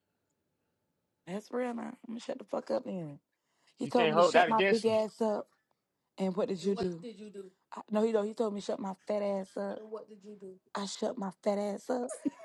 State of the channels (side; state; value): both; identical; correlation 1.00